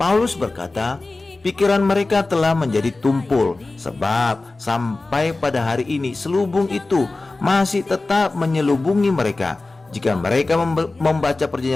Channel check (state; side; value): quieter; right; 3.2 dB